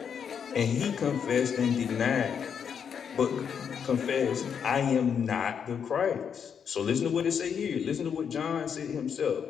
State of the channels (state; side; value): quieter; right; 7.3 dB